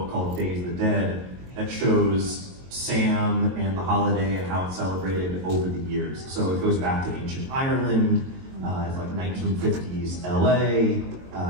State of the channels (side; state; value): left; late; 22 ms